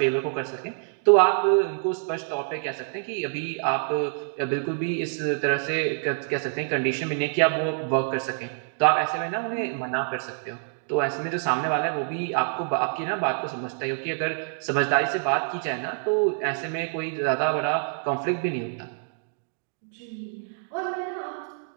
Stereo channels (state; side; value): silent; left; digital silence